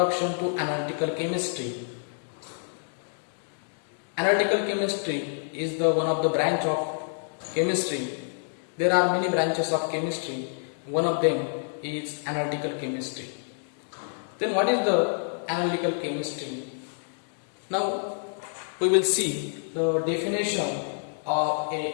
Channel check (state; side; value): silent; right; digital silence